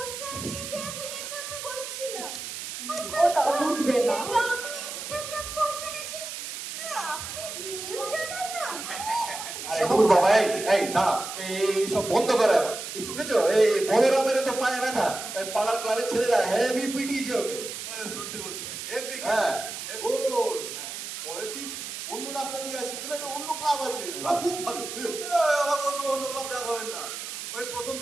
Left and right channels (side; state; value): right; noise; hiss, 8 dB below the sound